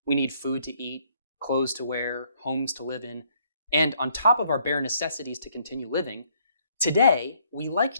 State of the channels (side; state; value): both; inverted; correlation -0.67